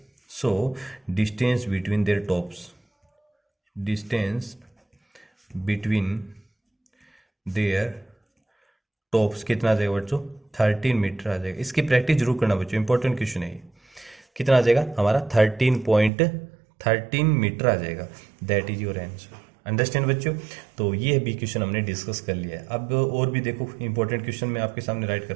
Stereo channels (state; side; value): drops out; left; at 16.1 s